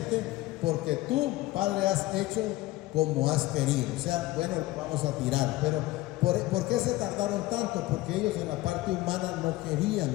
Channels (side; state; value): right; quieter; 18.1 dB